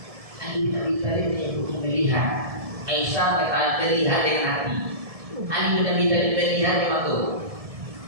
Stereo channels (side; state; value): left; late; 1.7 ms